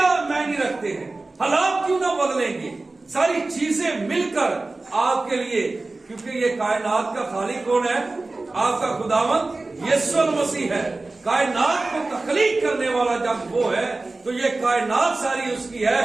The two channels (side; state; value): left; quieter; 3.2 dB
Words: معنی رکھتے ہیں؟ حالات کیوں نہ بدلیں گے؟ ساری چیزیں مل کر آپ کے لیے, کیونکہ یہ کائنات کا خالق کون ہے؟ آپ کا خداوند یسوع المسیح ہے. کائنات کو تخلیق کرنے والا جب وہ ہے تو یہ کائنات ساری اس کی ہے,